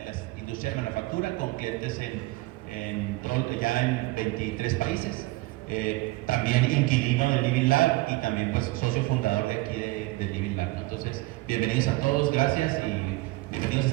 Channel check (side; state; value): left; quieter; 20.8 dB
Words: las industrias de manufactura con clientes ya en 23 países, también inquilino del Living Lab y también pues socio fundador de aquí del Living Lab, ¿no? Entonces, bienvenidos a todos, gracias y bienvenidos a